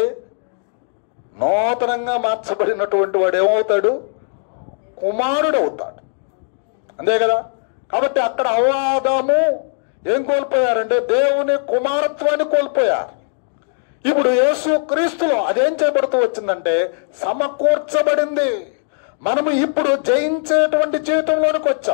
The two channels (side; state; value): right; silent; 67 dB below the other